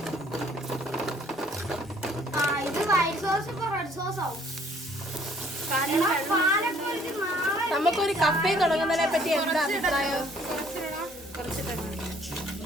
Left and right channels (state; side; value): normal; both; correlation 0.60